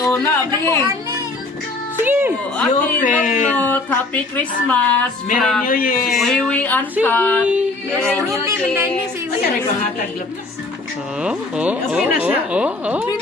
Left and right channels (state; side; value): quieter; right; 3.3 dB